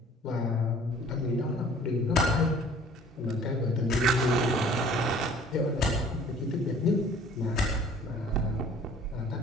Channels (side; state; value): both; normal; correlation 0.51